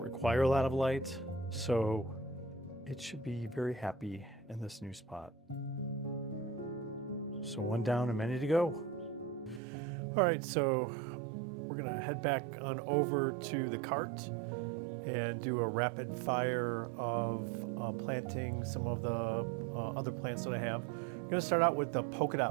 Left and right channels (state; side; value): drops out; left; at 9.6 s